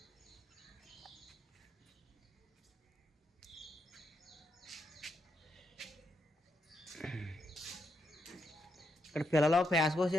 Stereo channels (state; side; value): normal; both; correlation 0.81